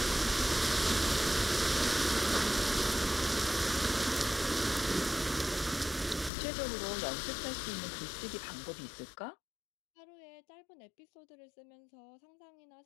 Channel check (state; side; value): drops out; right; at 6.3 s